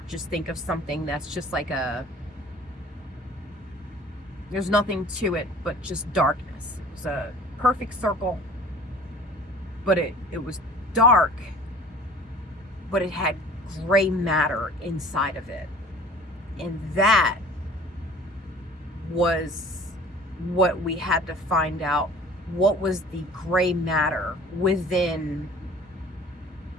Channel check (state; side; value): normal; both; correlation 0.46